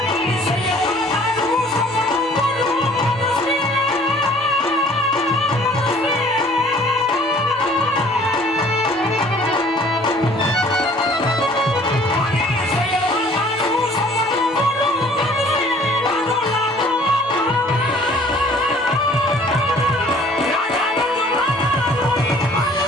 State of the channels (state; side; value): normal; both; correlation 0.54